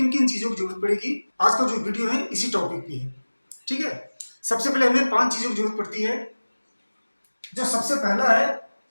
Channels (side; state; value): both; inverted; correlation -1.00